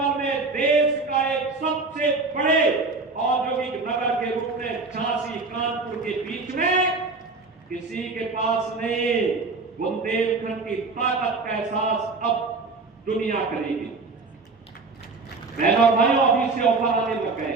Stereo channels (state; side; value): quieter; left; 3.9 dB